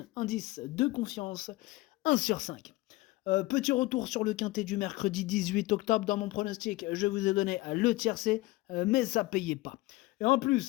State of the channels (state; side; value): quieter; right; 20.3 dB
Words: indice de confiance 1 sur 5. Petit retour sur le quintet du mercredi 18 octobre dans mon pronostic. Je vous ai donné le tiercé, mais ça payait pas. Et en